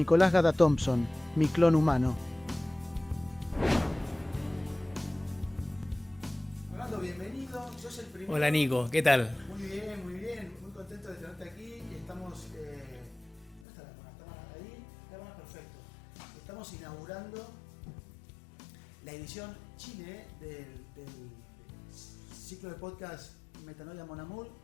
Gada Thompson, mi clon humano. Fernando, bienvenido, sos el primero. Hola Nico, ¿qué tal? Muy bien, muy contento de tenerte aquí. Estamos, ¿dónde está la cámara? ¿Está ahí? Cámara, perfecto. Estamos inaugurando la edición Chile del ciclo de podcast Metanoia Mon Amour,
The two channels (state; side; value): drops out; right; at 13.7 s